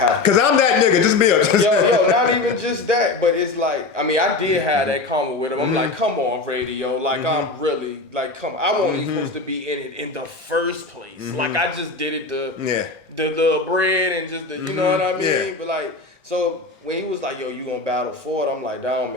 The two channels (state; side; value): quieter; right; 3.5 dB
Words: Cause I'm that nigga. Just be honest. Yo, not even just that, but it's like, I mean, I did have that comment with him. I'm like, come on, radio, like I'm really like, come on. I wasn't even supposed to be in it in the first place. Like I just did it the little bread and just the, you know what I mean? Yeah. But like, so when he was like, yo, you gonna battle for it? I'm like, that don't